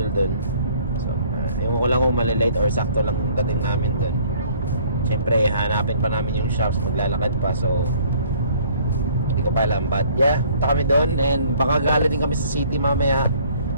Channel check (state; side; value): inverted; both; correlation -0.58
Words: doon. So ewan ko lang kung malilate or sakto lang yung dating namin doon. Siyempre hanapin pa namin yung shops, maglalakad pa, so hindi ko pa alam, but yeah, punta kami doon and baka gali din kami sa city mamaya